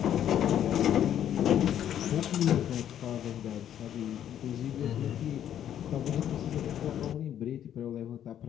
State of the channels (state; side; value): quieter; right; 10.4 dB